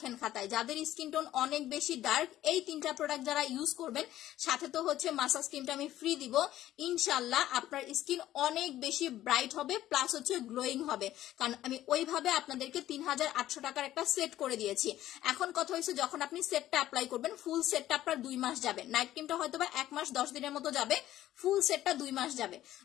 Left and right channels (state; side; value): quieter; right; 13.6 dB